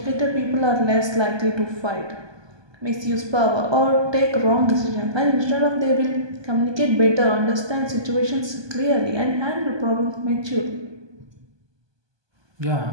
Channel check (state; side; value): late; left; 1.2 ms